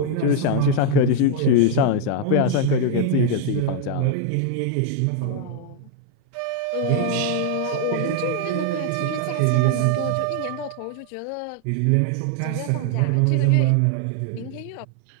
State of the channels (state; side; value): different; both; correlation 0.00